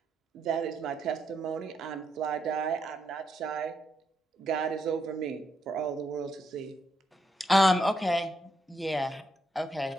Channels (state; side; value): normal; both; correlation 0.79